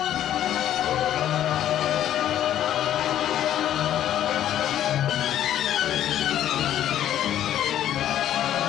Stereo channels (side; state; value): right; quieter; 11.4 dB